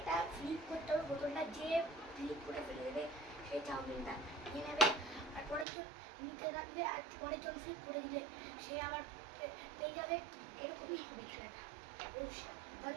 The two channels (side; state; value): left; drops out; at 5.7 s